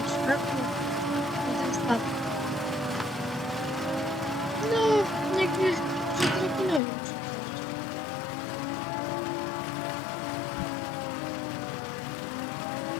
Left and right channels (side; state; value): right; drops out; at 6.8 s